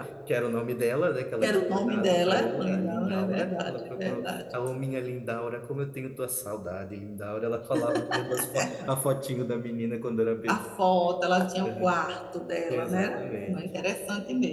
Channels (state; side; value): identical; both; correlation 1.00